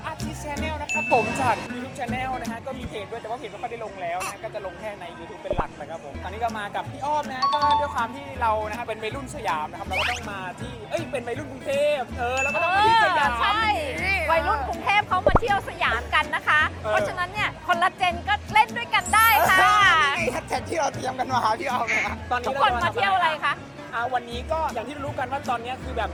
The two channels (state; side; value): identical; both; correlation 1.00